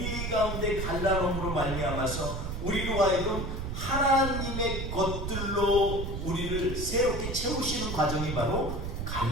가운데 갈라놓음으로 말미암아서 우리로 하여금 하나님의 것들로 우리를 새롭게 채우시는 과정이 바로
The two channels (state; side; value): noise; right; rumble, 4 dB below the sound